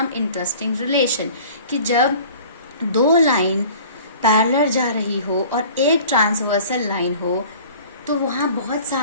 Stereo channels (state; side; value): inverted; both; correlation -0.46